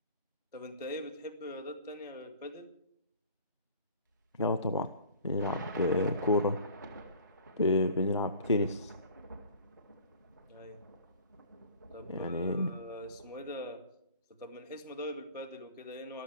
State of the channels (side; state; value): both; inverted; correlation -0.46